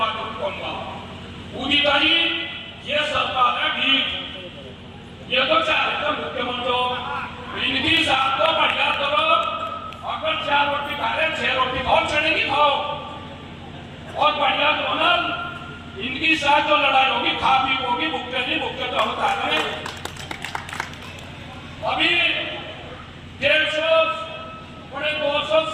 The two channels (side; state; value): both; identical; correlation 1.00